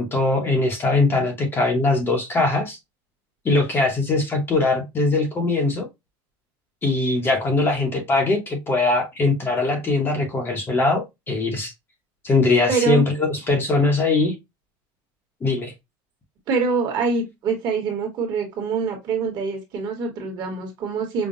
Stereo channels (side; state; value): both; normal; correlation 0.46